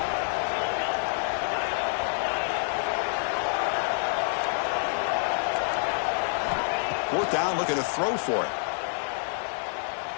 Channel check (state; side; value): silent; right; digital silence